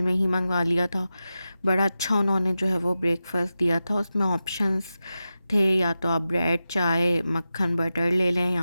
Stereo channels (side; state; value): both; inverted; correlation -0.93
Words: में ही मंगवा लिया था। बड़ा अच्छा उन्होंने जो है वो ब्रेकफ़ास्ट दिया था। उसमें ऑप्शंस थे, या तो आप ब्रेड, चाय, मक्खन, बटर ले लें,